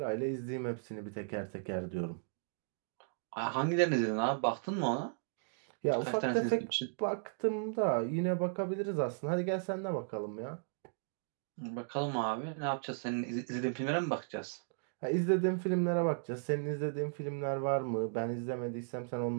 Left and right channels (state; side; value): silent; left; digital silence